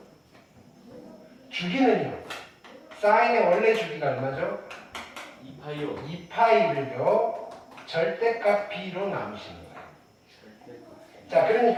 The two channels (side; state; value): both; identical; correlation 1.00